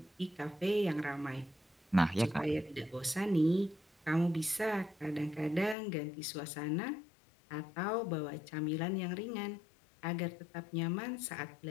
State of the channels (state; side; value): drops out; right; at 5.8 s